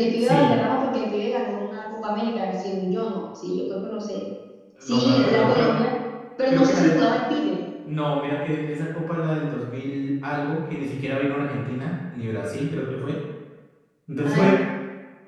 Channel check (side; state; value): both; identical; correlation 1.00